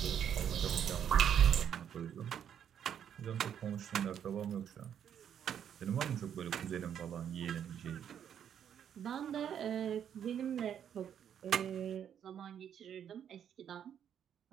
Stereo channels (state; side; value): quieter; left; 9.0 dB